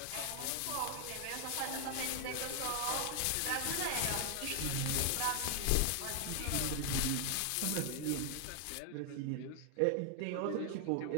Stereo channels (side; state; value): both; different; correlation 0.00